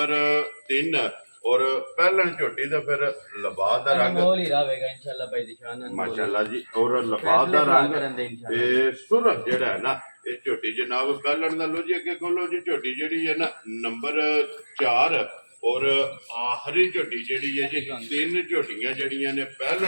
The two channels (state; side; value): inverted; both; correlation -1.00